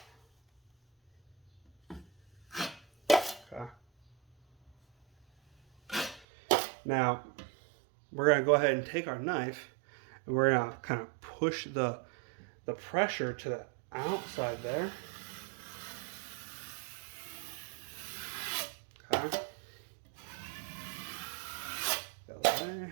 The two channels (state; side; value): drops out; left; at 6.2 s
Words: Okay. Now we're going to go ahead and take our knife and we're going to kind of push the pressure to the outside there. Okay. Go